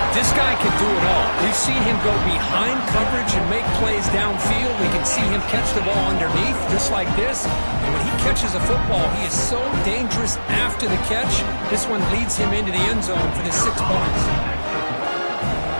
This guy can do it all. We've seen him go behind coverage and make plays downfield. We can see him catch the ball underneath, just like this. And when he catches a football, he is so dangerous after the catch. This one leads him into the end zone for the 6 points.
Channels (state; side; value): inverted; both; correlation -1.00